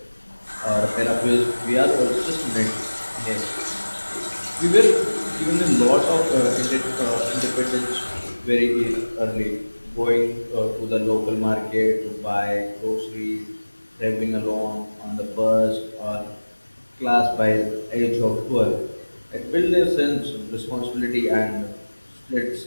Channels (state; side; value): inverted; both; correlation -1.00